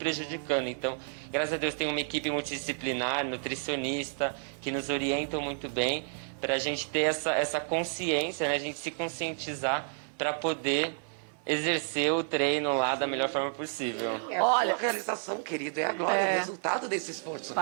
Então, graças a Deus tem uma equipe multidisciplinar, nutricionista, que nos orientam muito bem, pra gente ter essa consciência, né? A gente se conscientizar para poder exercer o treino lá da melhor forma possível. Olha, a realização, querido, é agora o resultado desse esforço.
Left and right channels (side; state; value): left; silent; 57 dB below the other